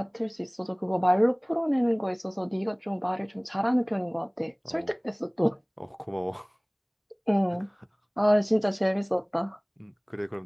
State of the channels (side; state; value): both; identical; correlation 1.00